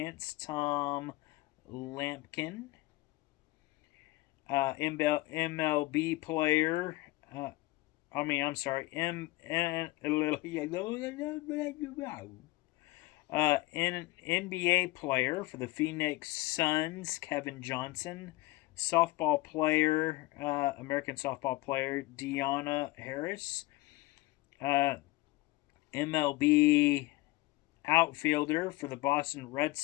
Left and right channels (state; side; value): quieter; right; 20.4 dB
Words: Tom Lampkin. MLB player. NBA player for the Phoenix Suns, Kevin Johnson. Softball player, American softball player, Deanna Harris. MLB outfielder for the Boston Red